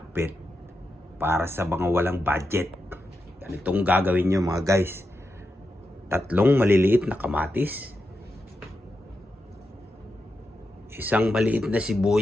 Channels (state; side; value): normal; both; correlation 0.87